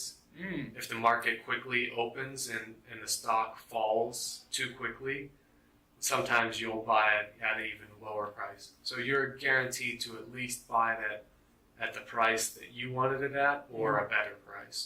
If the market quickly opens and the stock falls too quickly, sometimes you'll buy it at an even lower price. So you're guaranteed to at least buy it at the price that you wanted it at or a better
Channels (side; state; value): both; identical; correlation 1.00